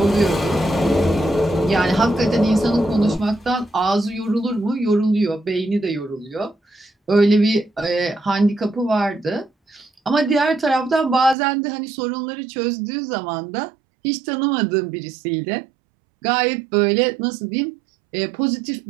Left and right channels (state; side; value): drops out; left; at 11.4 s